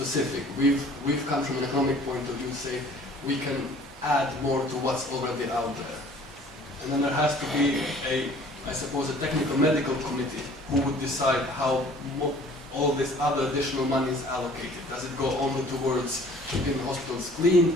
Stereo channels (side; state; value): both; normal; correlation 0.52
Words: We've come from an economic point of view, say we can add more to what's already out there, and then there has to be I suppose, a technical medical committee who would decide how all this other additional money is allocated? Does it go only towards keeping hospitals